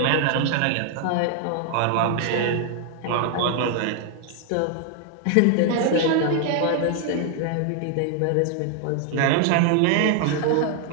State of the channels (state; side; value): different; both; correlation 0.00